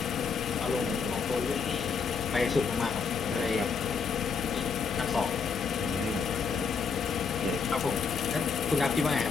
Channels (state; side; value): quieter; right; 5.5 dB